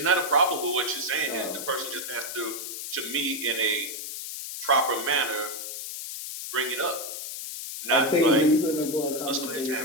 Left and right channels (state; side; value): noise; left; hiss, 7 dB below the sound